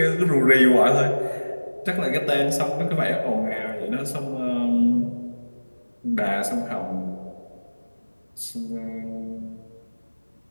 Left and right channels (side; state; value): both; inverted; correlation -1.00